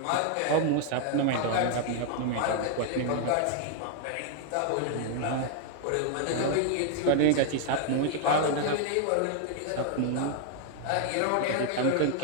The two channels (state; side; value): different; both; correlation 0.00